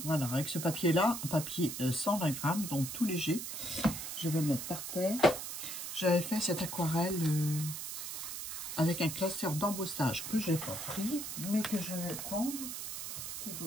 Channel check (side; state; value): right; noise; hiss, 6 dB below the sound